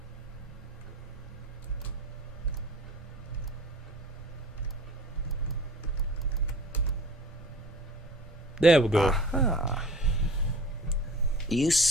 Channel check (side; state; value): both; normal; correlation 0.43